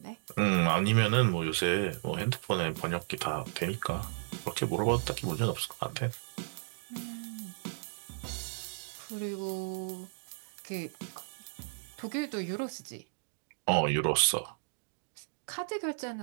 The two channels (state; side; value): silent; left; digital silence